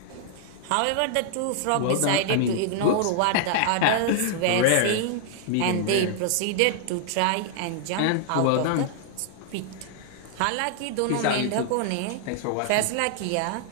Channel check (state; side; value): different; both; correlation -0.01